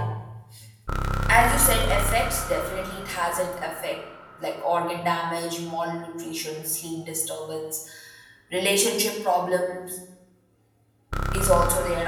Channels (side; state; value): both; identical; correlation 1.00